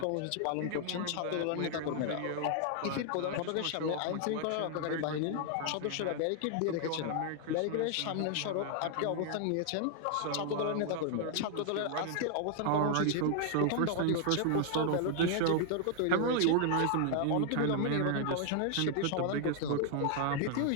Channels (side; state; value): both; different; correlation 0.00